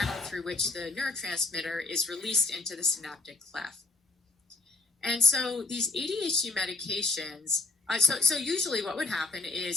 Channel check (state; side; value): quieter; right; 3.4 dB